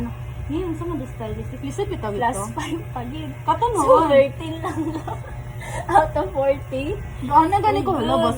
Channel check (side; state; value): both; identical; correlation 1.00